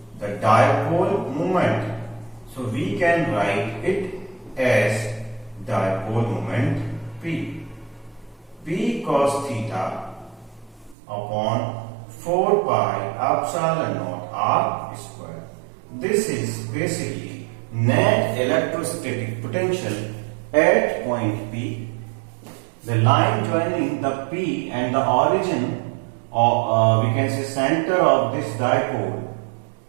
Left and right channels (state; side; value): drops out; left; at 11.0 s